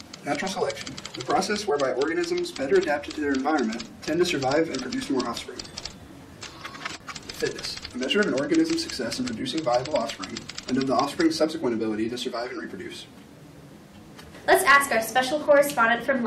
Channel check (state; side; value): identical; both; correlation 1.00